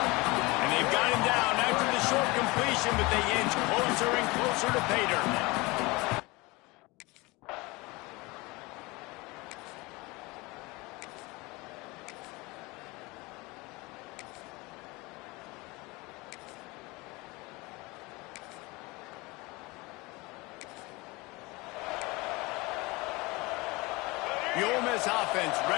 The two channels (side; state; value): right; quieter; 23.9 dB